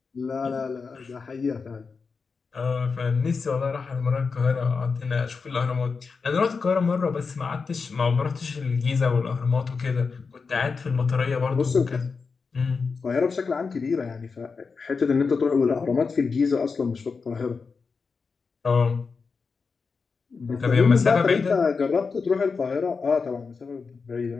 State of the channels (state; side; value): quieter; right; 4.9 dB